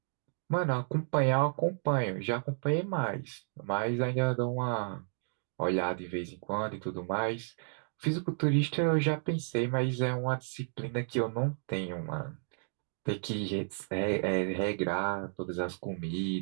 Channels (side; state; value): left; silent; digital silence